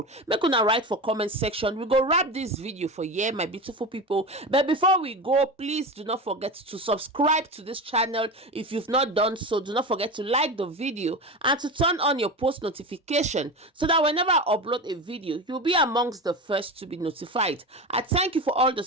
Make una write for comment section. We go wrap this video for here, my beautiful people. But before we go, please do not forget to subscribe to this channel if you've not done so. Do not forget to like the video and to turn on your post notification so that whenever I upload a video, you'll be amongst the first to be notified. I thank you for all the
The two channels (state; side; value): normal; both; correlation 0.25